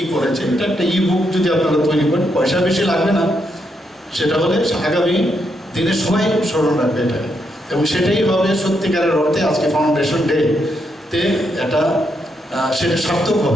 করেছে। এটা একটা ই বুক যদি আপনারা তৈরি করেন, পয়সা বেশি লাগবে না, সেটা হলে আগামী দিনে সবাই স্মরণ রাখবে এটাকে, এবং সেটাই হবে সত্যিকারের অর্থে আজকে ফাউন্ডেশন ডে তে এটা সেটা সার্থক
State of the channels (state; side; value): normal; both; correlation 0.80